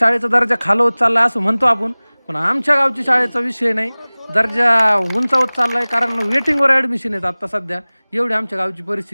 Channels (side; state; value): both; inverted; correlation -1.00